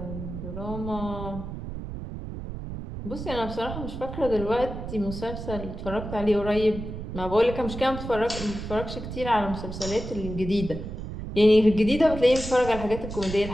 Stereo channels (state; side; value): noise; right; rumble, 8 dB below the sound